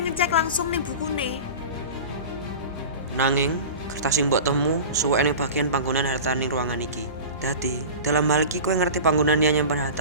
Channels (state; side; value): inverted; both; correlation -0.33